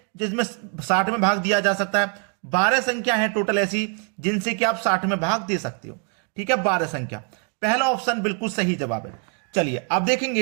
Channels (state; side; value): quieter; left; 37.3 dB